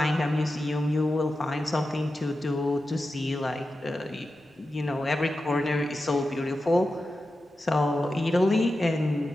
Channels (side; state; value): both; normal; correlation 0.92